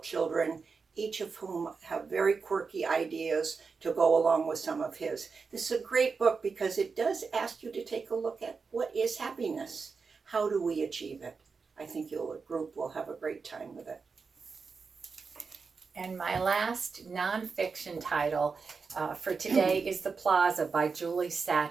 children, each of whom have very quirky ideas to go along with some of his. This is a great book because it does ask you to take a look at what is happiness? How do we achieve it? I think the group will have a great time with it. And my last nonfiction title for today is The Plaza by Julie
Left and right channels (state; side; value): quieter; left; 5.0 dB